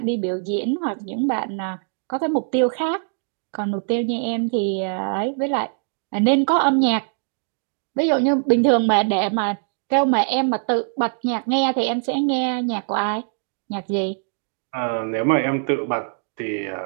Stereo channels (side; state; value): left; silent; 64 dB below the other